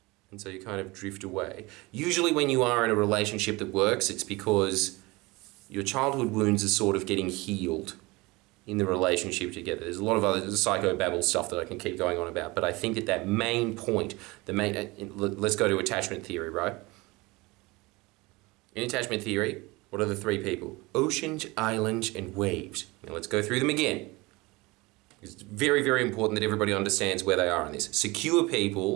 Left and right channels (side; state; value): left; quieter; 23.2 dB